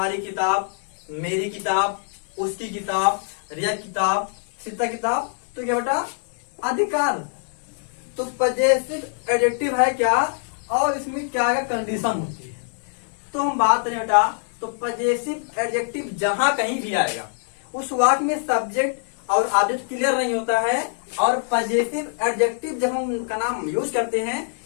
किताब, मेरी किताब, उसकी किताब, रिया किताब, सीता किताब। तो क्या बेटा, अधिकार। तो पजेसिव एडजेक्टिव है क्या और इसमें क्या क्या कंडीशन होती है? तो हम बात करें बेटा, तो पजेसिव एडजेक्टिव जहां कहीं भी आएगा उस वाक्य में सब्जेक्ट और ऑब्जेक्ट क्लियर नहीं होता है। और पजेसिव एडजेक्टिव जब हम उनका नाम यूज करते हैं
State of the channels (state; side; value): silent; right; 63 dB below the other